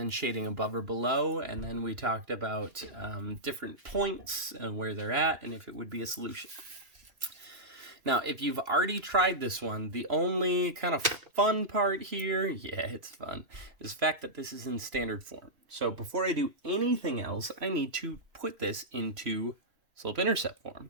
shading above or below, and then we talked about different points and where they're at and if it would be a solution. Now, if you've already tried this one, the only kind of fun part here, yeah, it's fun, is the fact that this is in standard form. So before I do anything else, I need to put this into slope-intercept form.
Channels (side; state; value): left; late; 3.0 ms